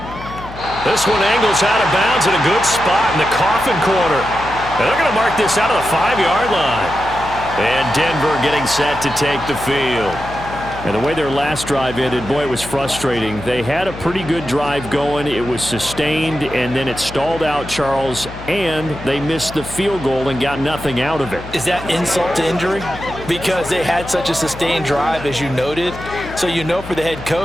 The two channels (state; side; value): noise; left; hum, 13 dB below the sound